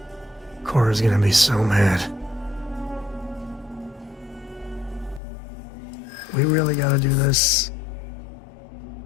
Cora's gonna be so mad. We really gotta do this?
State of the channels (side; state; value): right; drops out; at 5.2 s